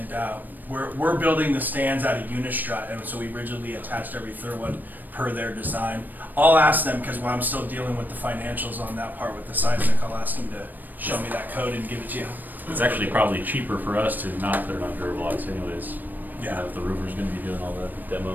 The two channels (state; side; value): late; left; 0.088 ms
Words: we're building the stands out of Unistrut, and so we rigidly attached every third one per their design. I'll ask them, because while I'm still dealing with the financials on that part with the seismic, I'll ask them to show me that code and give it to you. It's actually probably cheaper for us to not put it on Durablocks anyways. Yeah. If the roofer's gonna be doing all the